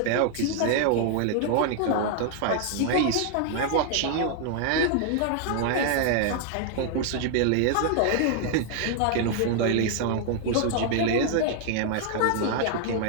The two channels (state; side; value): different; both; correlation 0.00